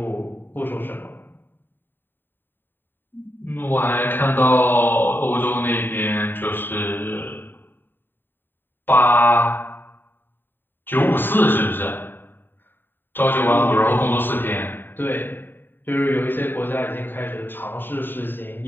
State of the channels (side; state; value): right; late; 0.094 ms